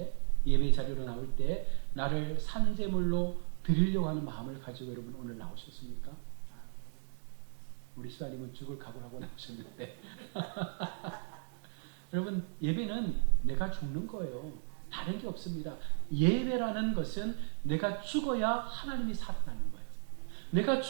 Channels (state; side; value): silent; left; digital silence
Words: 예배 자리로 나올 때 나를 산제물로 드리려고 하는 마음을 가지고 여러분 오늘 나오셨습니까? 우리 시사님은 죽을 각오하고 나오셨는데 여러분 예배는 내가 죽는 거예요. 다른 게 없습니다. 예배라는 것은 내가 죽어야 하나님이 살아나는 거예요. 내가